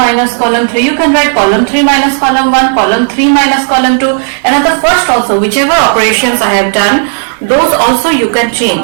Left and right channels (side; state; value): left; silent; 69 dB below the other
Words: column 3. You can write column 3 minus column 1, column 3 minus column 2. And at the first also, whichever operations I have done, those also you can